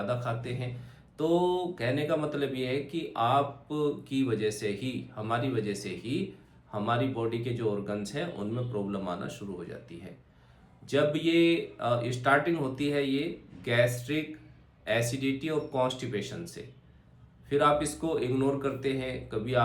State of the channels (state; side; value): identical; both; correlation 1.00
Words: खाते हैं। तो कहने का मतलब ये है कि आप की वजह से ही, हमारी वजह से ही हमारी बॉडी के जो ऑर्गन्स हैं उनमें प्रॉब्लम आना शुरू हो जाती है। जब ये स्टार्टिंग होती है ये गैस्ट्रिक एसिडिटी और कॉन्स्टिपेशन से, फिर आप इसको इग्नोर करते हैं। कभी